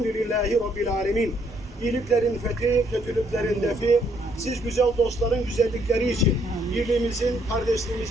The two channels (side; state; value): both; normal; correlation 0.69